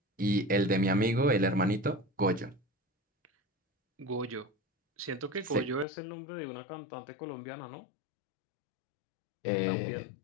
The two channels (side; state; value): right; drops out; at 5.9 s